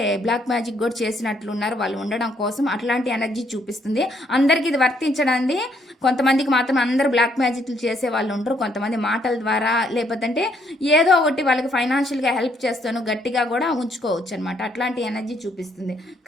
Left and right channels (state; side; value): normal; both; correlation 0.70